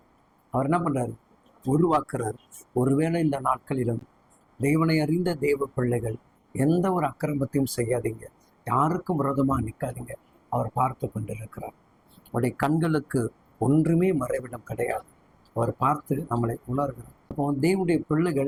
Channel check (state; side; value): identical; both; correlation 1.00